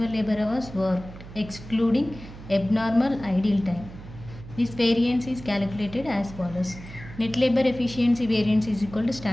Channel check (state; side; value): noise; right; hum, 15 dB below the sound